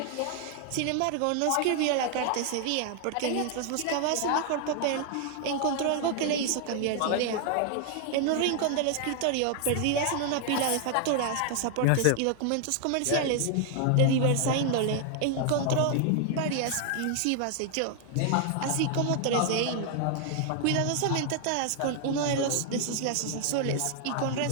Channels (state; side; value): different; both; correlation 0.00